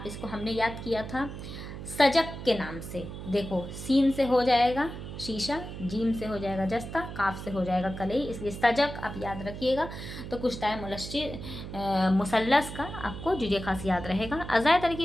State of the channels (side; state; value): right; noise; hum, 9 dB below the sound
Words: इसको हमने याद किया था सजक के नाम से। देखो सीन से हो जाएगा शीशा, जीम से हो जाएगा जस्ता, काफ से हो जाएगा कलई, इसलिए सजक आप याद रखिएगा। तो कुश्ताए मुसल्लस का आपको जुजे खास याद रहेगा। अज़ाय